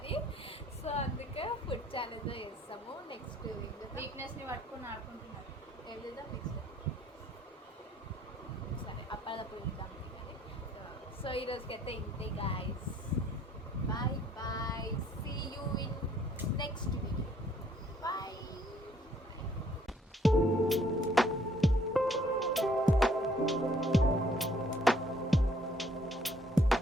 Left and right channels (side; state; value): both; normal; correlation 0.62